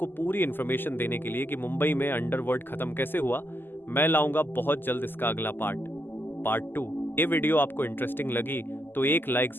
पूरी इन्फॉर्मेशन देने के लिए कि मुंबई में अंडरवर्ल्ड खत्म कैसे हुआ, मैं लाऊंगा बहुत जल्द इसका अगला पार्ट 2। ये वीडियो आपको इंटरेस्टिंग लगी तो एक लाइक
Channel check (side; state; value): right; late; 0.095 ms